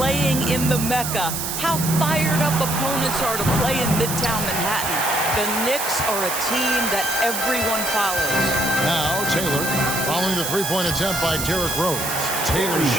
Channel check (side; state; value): right; noise; hiss, 3 dB below the sound